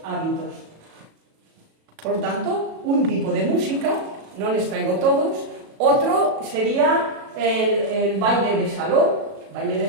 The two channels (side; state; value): left; late; 37 ms